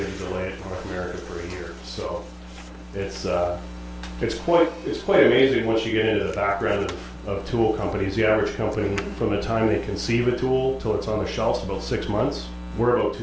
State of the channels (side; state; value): both; identical; correlation 1.00